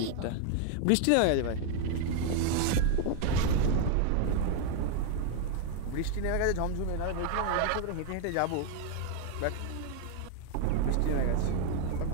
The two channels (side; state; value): both; different; correlation 0.00